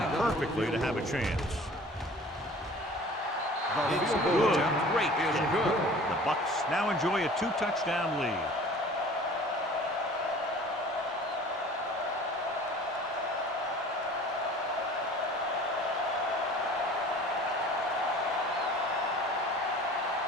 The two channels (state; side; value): normal; both; correlation 0.45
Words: perfectly to have a chance. It's good. Great is good. The Bucks now enjoy a 2-touchdown lead.